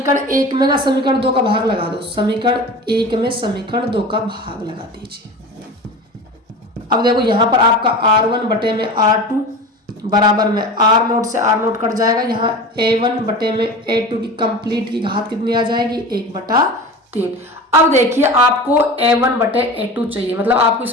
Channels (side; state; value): both; normal; correlation 0.33